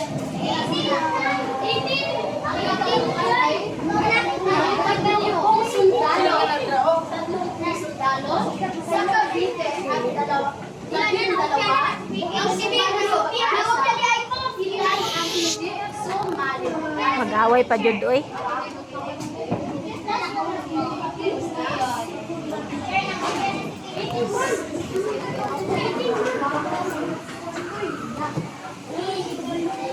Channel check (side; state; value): both; identical; correlation 1.00